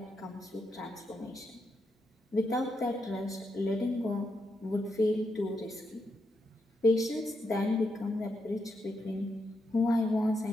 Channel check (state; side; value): normal; both; correlation 0.83